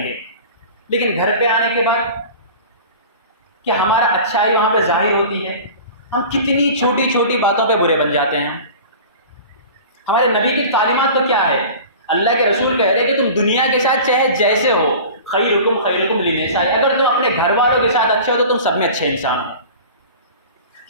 گے، لیکن گھر پہ آنے کے بعد کیا ہمارا اچھائی وہاں پہ ظاہر ہوتی ہے؟ ہم کتنی چھوٹی چھوٹی باتوں پہ برے بن جاتے ہیں۔ ہمارے نبی کی تعلیمات تو کیا ہے؟ اللہ کے رسول کہہ رہے کہ تم دنیا کے ساتھ چاہے جیسے ہو، خیرکم لنسائہ، اگر تم اپنے گھر والوں کے ساتھ اچھے ہو تو تم سب میں اچھے انسان ہو۔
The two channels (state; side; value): inverted; both; correlation -0.38